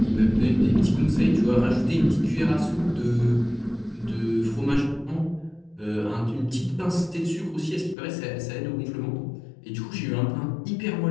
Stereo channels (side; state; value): right; drops out; at 8.0 s